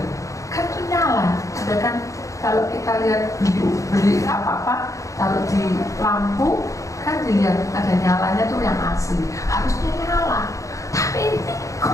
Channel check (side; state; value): right; late; 0.15 ms